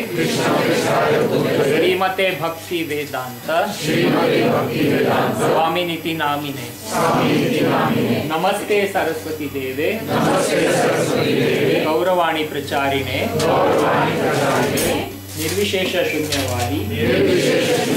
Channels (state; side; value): identical; both; correlation 1.00